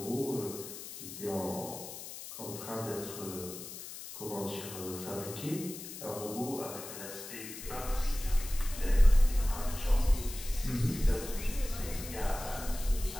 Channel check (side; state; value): left; noise; hiss, 11 dB below the sound